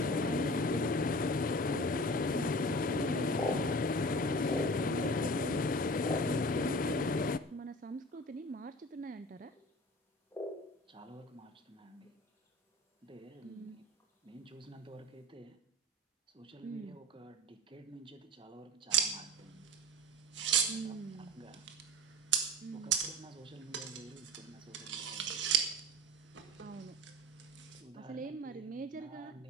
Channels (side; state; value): both; normal; correlation 0.36